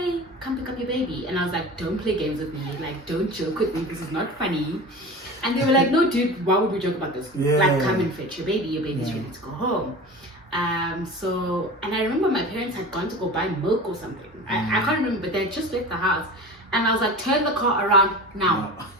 come pick up your baby. And I was like, don't play games with me, like don't joke with me, this is not funny. And they were like, no dude, why would we joke about this? Like come and fetch your baby's ready to go home. So, and I remember my parents had gone to go buy milk or something. I can't remember, but they had just left the house. And I was like, turn the car around now.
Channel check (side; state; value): both; normal; correlation 0.33